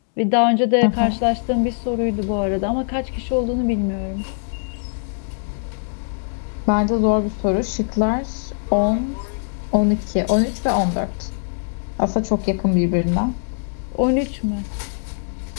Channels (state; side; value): silent; right; digital silence